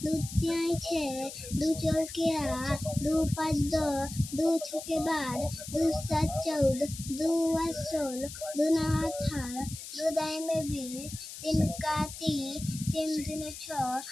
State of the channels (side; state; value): left; noise; hiss, 11 dB below the sound